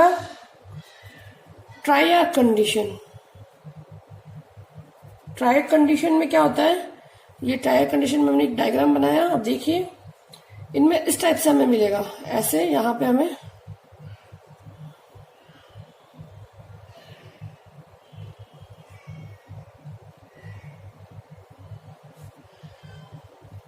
ट्राइआर्क कंडीशन। ट्राइआर्क कंडीशन में क्या होता है, ये ट्राइआर्क कंडीशन में हमने एक डायग्राम बनाया, अब देखिए इनमें इस टाइप से हमें मिलेगा, ऐसे यहां पे हमें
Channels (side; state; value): both; identical; correlation 1.00